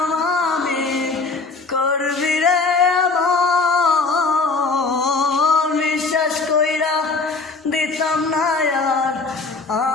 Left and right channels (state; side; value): quieter; right; 4.0 dB